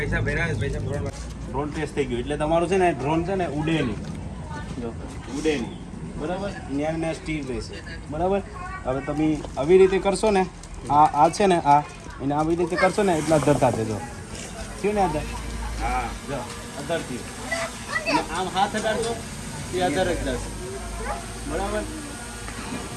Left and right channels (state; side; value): identical; both; correlation 1.00